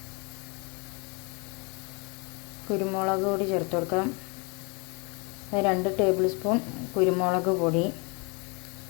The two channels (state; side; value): quieter; right; 31.7 dB